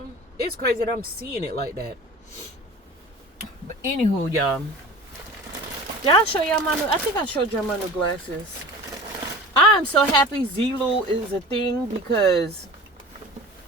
it's crazy that I'm seeing it like that. But anywho, y'all. Did I show y'all my new? I think I showed y'all my new glasses. I'm so happy Zulu is a thing because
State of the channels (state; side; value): normal; both; correlation 0.38